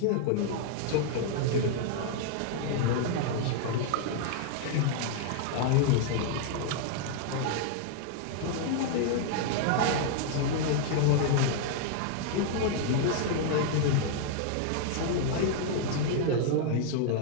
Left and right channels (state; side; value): different; both; correlation -0.01